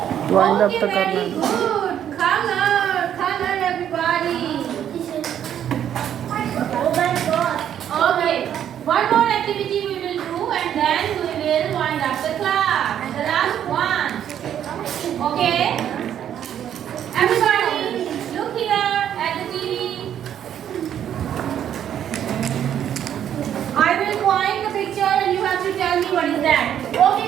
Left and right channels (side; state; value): left; quieter; 9.9 dB